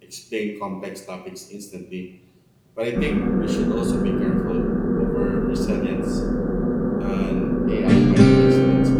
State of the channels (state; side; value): identical; both; correlation 1.00